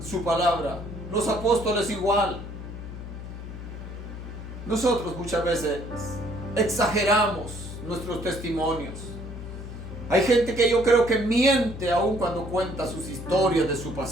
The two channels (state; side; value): noise; left; hum, 10 dB below the sound